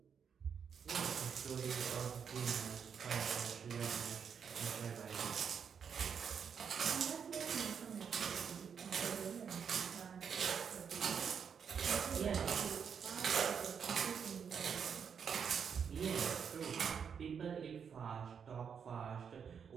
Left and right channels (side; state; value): left; quieter; 7.0 dB